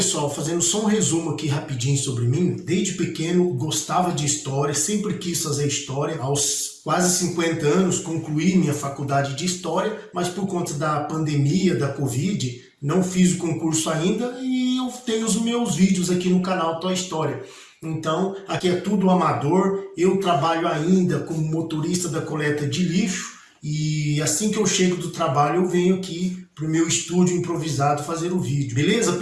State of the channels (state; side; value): identical; both; correlation 1.00